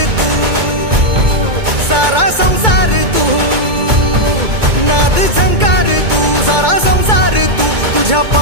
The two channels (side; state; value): left; late; 2.2 ms